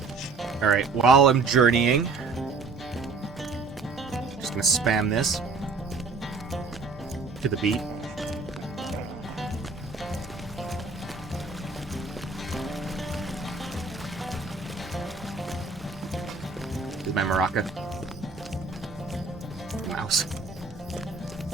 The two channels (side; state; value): left; quieter; 4.1 dB